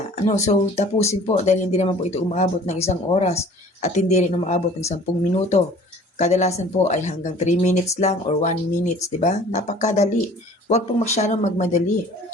So tapusin po dahil hindi naman po ito umaabot ng 1 oras at hindi rin umaabot ng 10 minuto. Kadalasan po ay hanggang 3 minutes lang or 1 minutes, di ba? Napakadali. Huwag pong masyadong magmadali.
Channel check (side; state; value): both; normal; correlation 0.49